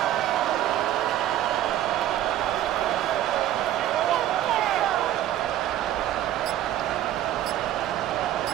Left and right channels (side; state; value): left; quieter; 12.6 dB